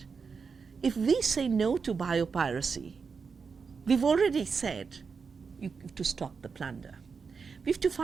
If we say no to biopiracy, we've already said you have to stop the plunder. We have to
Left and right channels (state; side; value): quieter; left; 5.4 dB